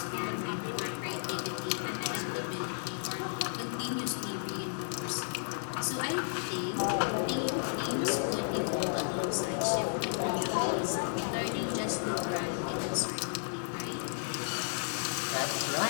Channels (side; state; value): right; silent; digital silence